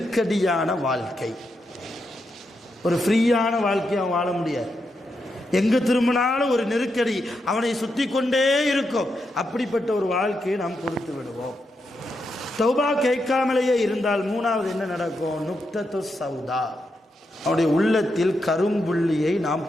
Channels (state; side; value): normal; both; correlation 0.84